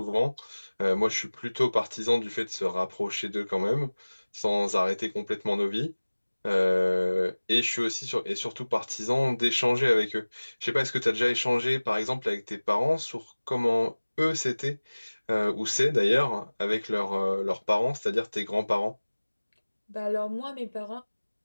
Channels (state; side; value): inverted; both; correlation -1.00